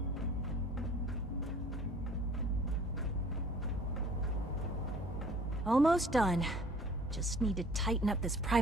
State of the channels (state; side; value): normal; both; correlation 0.53